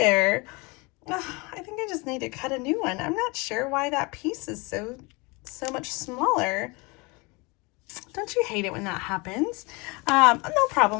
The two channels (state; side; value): quieter; right; 27.1 dB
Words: I think I just need to cut a new one. I'm not sure why that piece is so much smaller. Don't you hate it when that happens? No